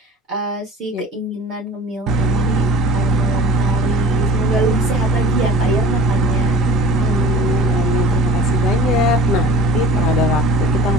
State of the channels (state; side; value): normal; both; correlation 0.43